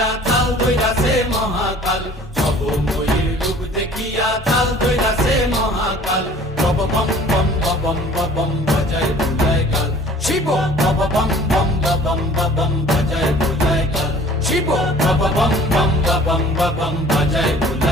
তাল ধৈরাছে মহাকাল, ভবময়ীর রূপ দেখিয়া তাল ধৈরাছে মহাকাল। বব বম বম বাজায় বুলায় গাল, শিব বব বম বম বাজায় বুলায় গাল, শিব বব বম বম বাজায়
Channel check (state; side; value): normal; both; correlation 0.50